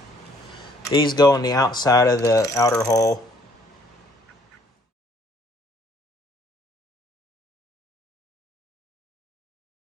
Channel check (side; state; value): both; normal; correlation 0.62